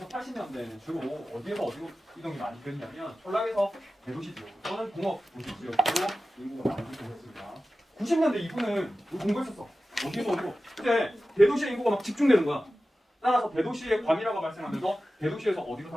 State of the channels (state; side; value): normal; both; correlation 0.94